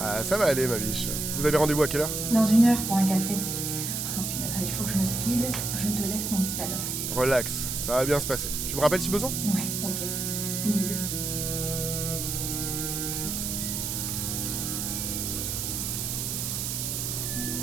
ça va aller, ma biche. Vous avez rendez-vous à quelle heure? Dans 1 heure pour un café. Oh putain, il faut que je me speed. Je te laisse mon petit Adam. Relax, ça va bien se passer. Tu me rappelles si besoin? Ouais, ok. Bisous.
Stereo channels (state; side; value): noise; right; hiss, 2 dB below the sound